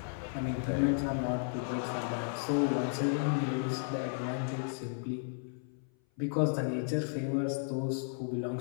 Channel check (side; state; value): right; silent; 55 dB below the other